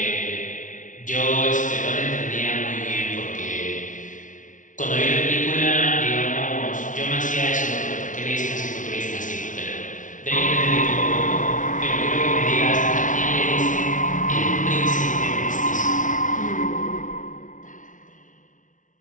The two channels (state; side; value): late; right; 0.37 ms